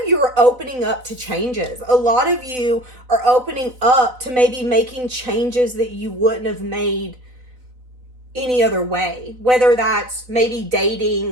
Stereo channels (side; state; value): left; late; 4.0 ms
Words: you are opening up to changes. A lot of you are opening up to maybe making changes that you wouldn't have made any other way, whether that's maybe